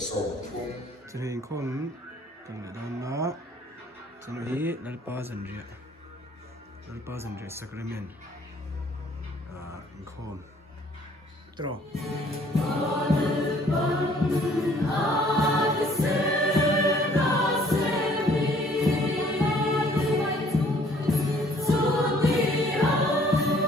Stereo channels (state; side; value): normal; both; correlation 0.59